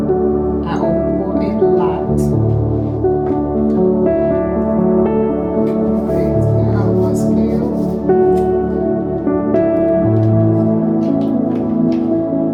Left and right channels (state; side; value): identical; both; correlation 1.00